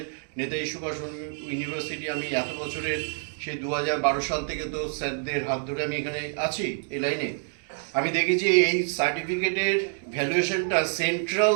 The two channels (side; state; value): left; silent; 60 dB below the other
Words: নেতাজি সুভাষ ইউনিভার্সিটি, আমি এত বছরের সেই 2012 সাল থেকে তো স্যারদের হাত ধরে আমি এখানে আছি এই লাইনে। আমি দেখেছি এই সার্টিফিকেটের ভ্যালুয়েশনটা